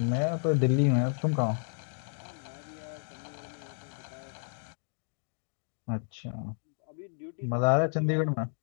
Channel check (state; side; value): silent; right; digital silence